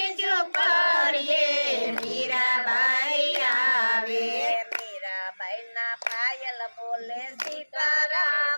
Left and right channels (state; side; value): inverted; both; correlation -1.00